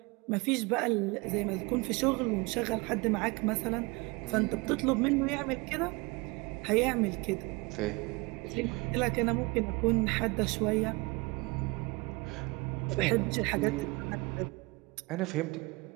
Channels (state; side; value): quieter; left; 25.9 dB